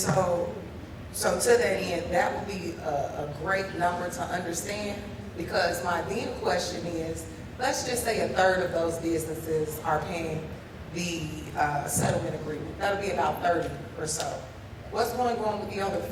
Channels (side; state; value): both; identical; correlation 1.00